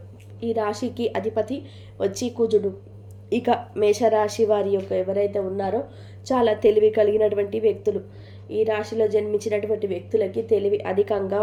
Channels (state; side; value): identical; both; correlation 1.00